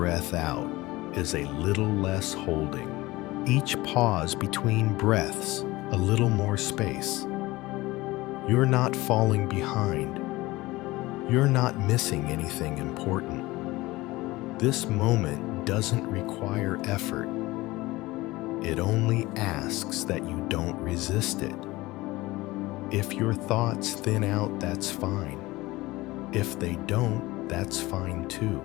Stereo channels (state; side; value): quieter; right; 19.9 dB